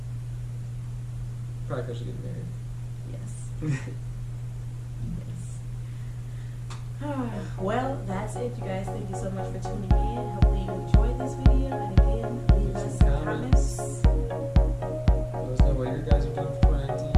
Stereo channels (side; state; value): both; identical; correlation 1.00